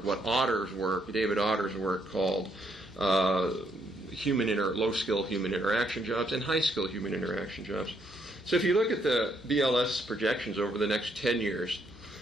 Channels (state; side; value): normal; both; correlation 0.73